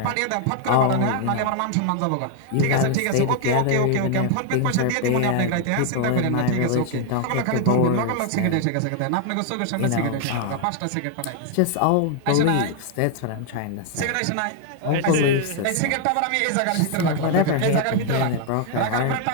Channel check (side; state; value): both; different; correlation 0.00